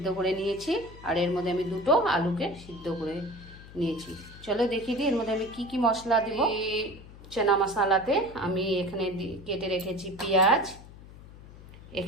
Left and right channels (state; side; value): noise; left; hum, 18 dB below the sound